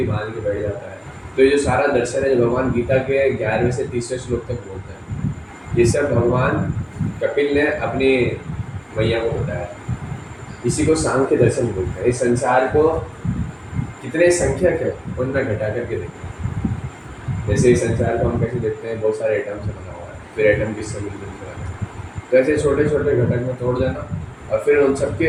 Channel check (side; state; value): both; identical; correlation 1.00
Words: बांध के बैठ जाता है। तो ये जो सारा दर्शन है जो भगवान गीता के 11वें से 30वें श्लोक तक बोलते हैं, ये सब भगवान कपिल ने अपनी मैया को बताया। इसी को सांख्य दर्शन बोलते हैं। इस संसार को कितने संख्यक है उनमें घटा करके देखते हैं। जैसे इस संसार को हम कैसे देखते हैं, बहुत सारे एटम से बना हुआ है, फिर एटम किससे मिलकर बना है, तो ऐसे छोटे छोटे घटक में तोड़ देना और फिर उन